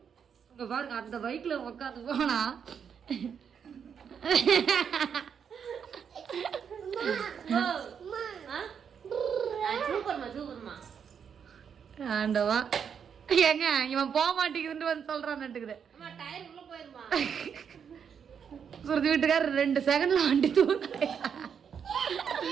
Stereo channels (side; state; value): left; quieter; 7.3 dB